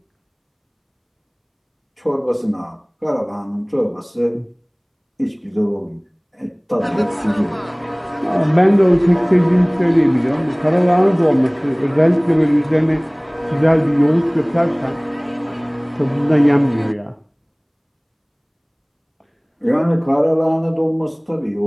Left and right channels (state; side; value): identical; both; correlation 1.00